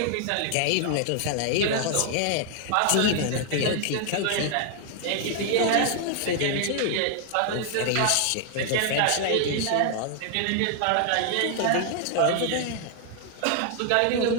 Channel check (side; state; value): both; different; correlation 0.00